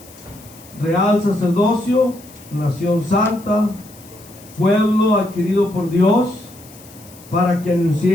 real sacerdocio, nación santa, pueblo adquirido por Dios, para que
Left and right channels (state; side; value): noise; left; hiss, 22 dB below the sound